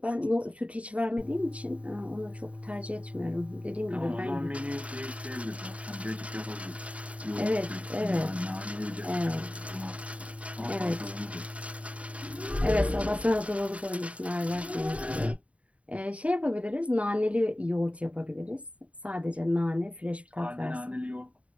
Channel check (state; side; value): late; left; 0.065 ms